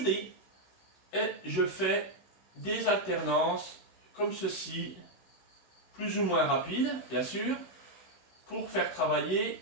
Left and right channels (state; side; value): late; right; 16 ms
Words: et je fais des alternances comme ceci, plus ou moins rapides, bien sûr, pour faire travailler